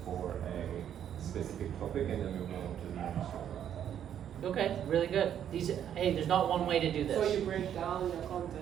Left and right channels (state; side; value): quieter; left; 9.7 dB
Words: for a specific topic and then we move on to the next topic. Okay, really good. Hey, there's not one way to do this. So you break down your